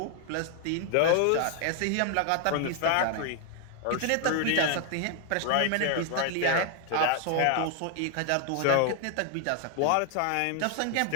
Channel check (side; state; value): both; different; correlation 0.01